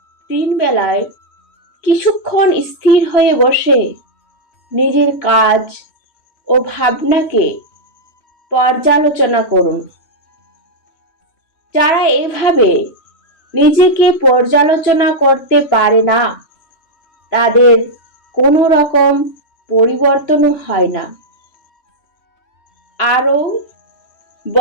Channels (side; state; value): right; late; 2.9 ms